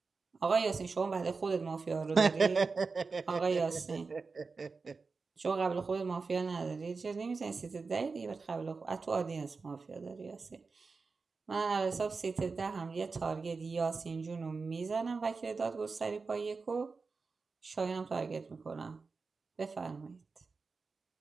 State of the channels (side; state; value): left; quieter; 4.4 dB